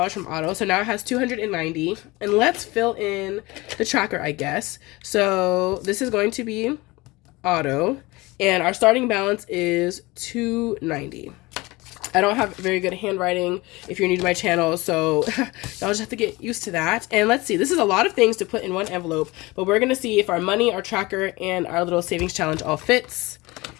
from auto. So now it has $290. And let's fill in the tracker, I guess. So this is going to be auto, and our starting balance is $290. I don't have very good handwriting if you're new to my channel, so y'all just have to get used to that. And let's see, this is a lot of things to put in one envelope, but we're going to see if our money, our tracker, and our little savings challenge all fits.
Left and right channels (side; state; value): right; quieter; 22.3 dB